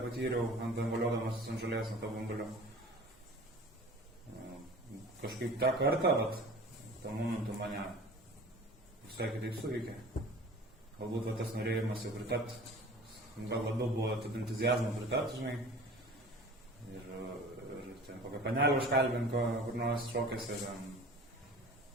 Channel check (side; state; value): both; normal; correlation 0.42